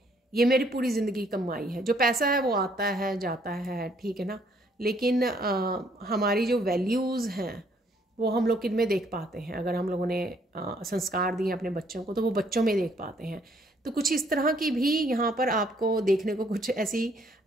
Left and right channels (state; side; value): normal; both; correlation 0.66